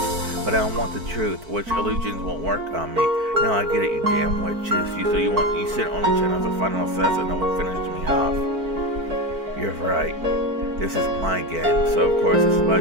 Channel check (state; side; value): late; left; 4.5 ms